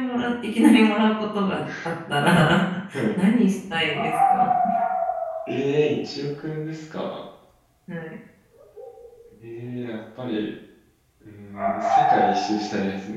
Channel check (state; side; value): identical; both; correlation 1.00